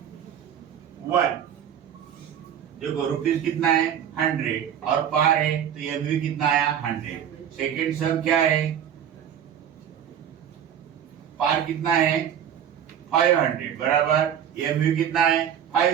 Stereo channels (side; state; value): left; quieter; 9.2 dB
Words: 1। देखो रुपीज कितना है 100 और पार है तो ये भी कितना आया 100। सेकेंड सम क्या है, पार कितना है 500 बराबर, ये भी कितना है